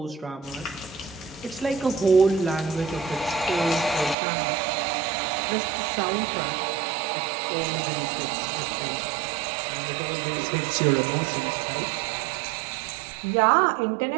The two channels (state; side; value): drops out; left; at 4.2 s